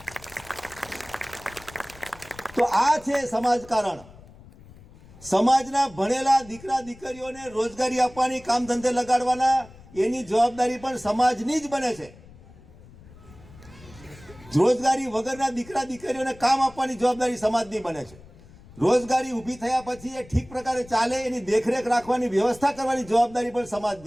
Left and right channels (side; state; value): left; noise; rumble, 21 dB below the sound